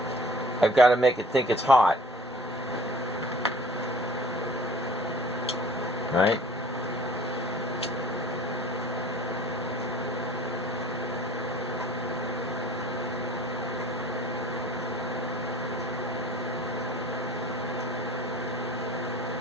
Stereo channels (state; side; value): normal; both; correlation 0.50